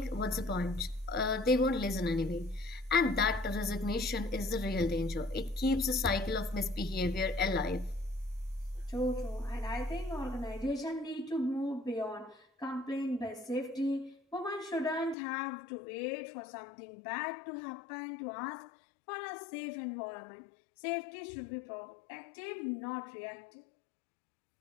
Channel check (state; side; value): drops out; right; at 15.2 s